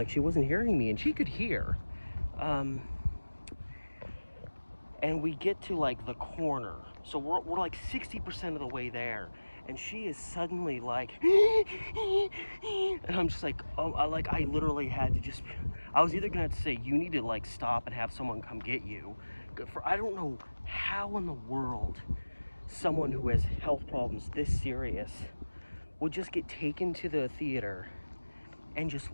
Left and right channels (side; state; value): both; inverted; correlation -1.00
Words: she wasn't hearing me, and she could hear. And we get to like the corner, so we're like 60% of the way there, and she is suddenly like and I'm just like, oh, I literally had to just, I was either gonna have to say, you need to like stop and have someone come get you, for I don't know how in the world someone who has health problems this serious would just get taken to the theater and just